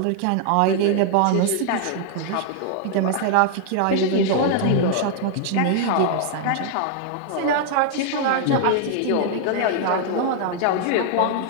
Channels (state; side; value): different; both; correlation -0.01